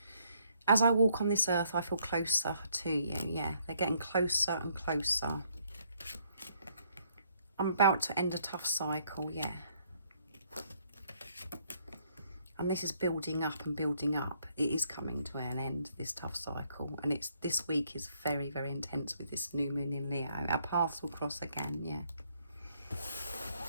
As I walk on this earth, I feel closer to you. Yeah, they're getting closer and closer. I'm about to end a tough cycle, yeah. And this is building up and building up. It is coming to an end, this tough cycle. And this week is very, very intense with this new moon in Leo. Our paths will cross again, yeah.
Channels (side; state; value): both; inverted; correlation -0.69